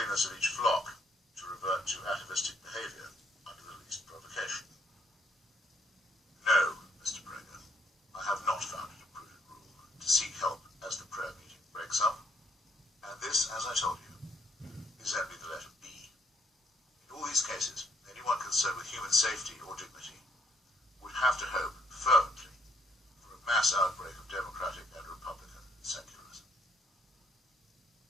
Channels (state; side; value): normal; both; correlation 0.69